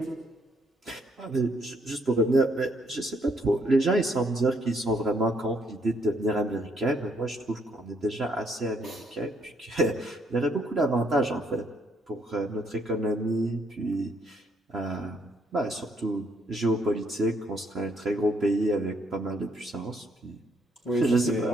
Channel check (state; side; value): normal; both; correlation 0.71